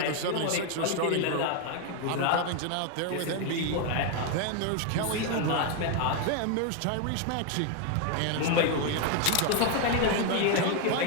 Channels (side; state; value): both; different; correlation 0.01